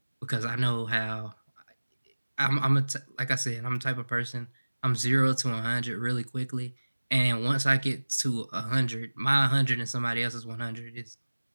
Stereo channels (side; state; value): both; inverted; correlation -1.00